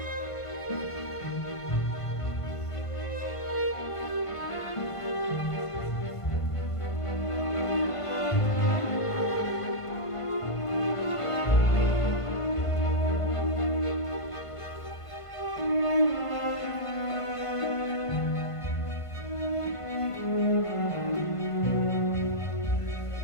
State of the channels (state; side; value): late; right; 1.5 ms